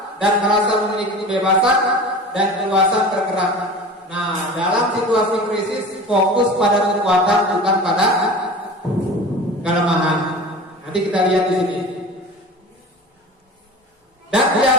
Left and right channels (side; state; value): both; normal; correlation 0.36